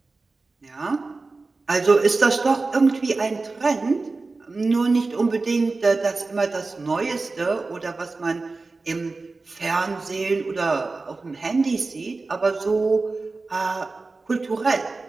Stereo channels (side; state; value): left; quieter; 3.7 dB